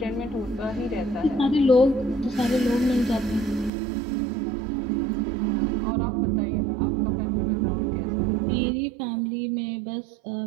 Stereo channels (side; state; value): left; drops out; at 3.7 s